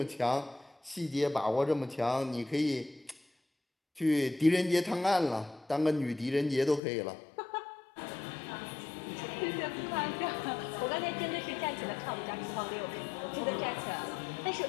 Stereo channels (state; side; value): drops out; right; at 6.8 s